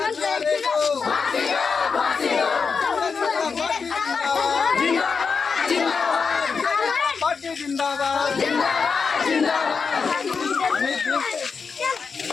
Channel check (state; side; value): quieter; right; 5.3 dB